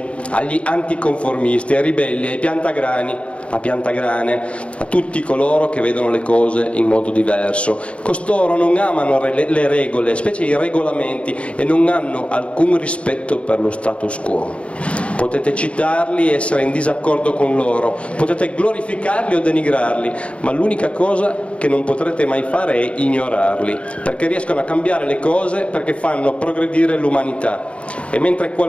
agli anticonformisti, ai ribelli, ai piantagrani, a piantagrane, a tutti coloro che vedono le cose in modo diverso. Costoro non amano le regole, specie i regolamenti, e non hanno alcun rispetto per lo status quo. Potete citarli e essere in disaccordo con loro, potete glorificarli o denigrarli, ma l'unica cosa che non potrete mai fare è ignorarli, perché riescono a cambiare le cose, perché fanno progredire l'umanità. E mentre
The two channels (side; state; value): right; late; 0.062 ms